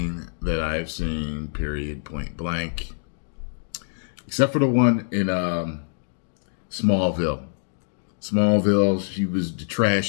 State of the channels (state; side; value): silent; right; digital silence